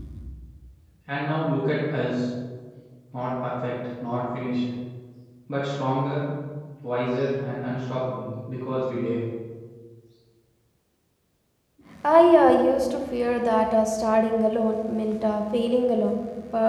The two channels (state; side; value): identical; both; correlation 1.00